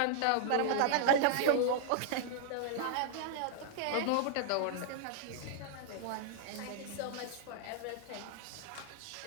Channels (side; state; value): both; different; correlation -0.01